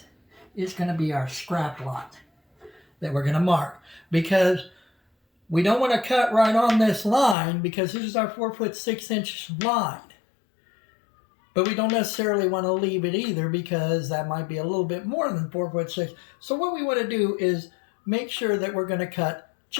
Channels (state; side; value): drops out; right; at 7.4 s